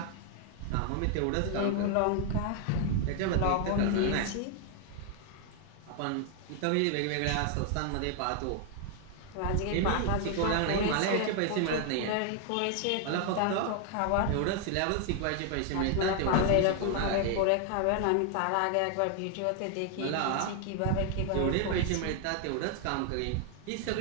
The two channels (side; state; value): both; different; correlation 0.00